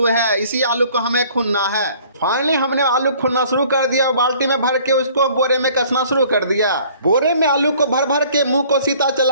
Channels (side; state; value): both; inverted; correlation -0.55